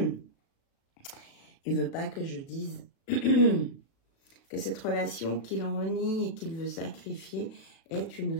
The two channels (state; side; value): late; right; 36 ms